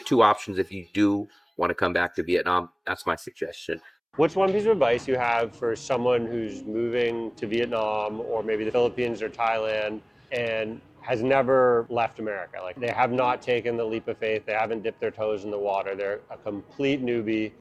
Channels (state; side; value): identical; both; correlation 1.00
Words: two options if you do want to come back to Vietnam. That's my suggestion. What's one piece of advice you have for someone who's moving to Vietnam or maybe the Philippines or Thailand and has never left America? Like they have not taken the leap of faith, they haven't dipped their toes in the water, they're a complete newbie